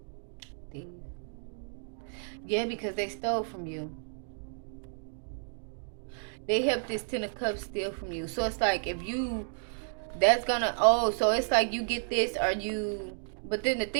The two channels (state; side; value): silent; left; digital silence